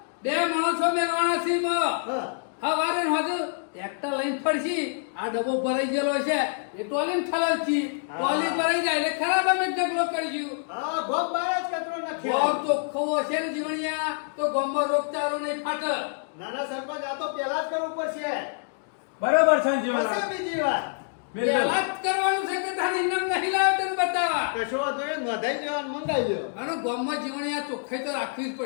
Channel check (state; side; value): silent; right; digital silence